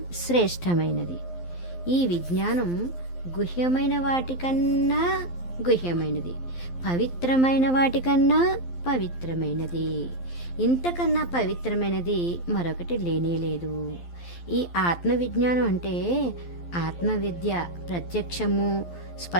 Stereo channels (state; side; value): late; right; 12 ms